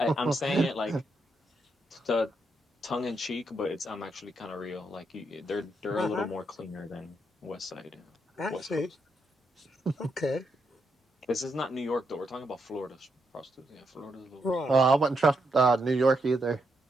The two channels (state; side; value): normal; both; correlation 0.80